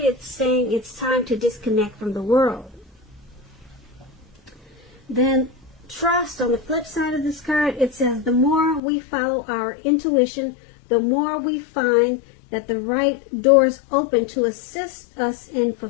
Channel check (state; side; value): drops out; right; at 8.8 s